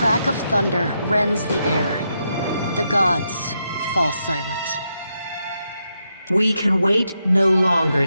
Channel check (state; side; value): inverted; both; correlation -0.83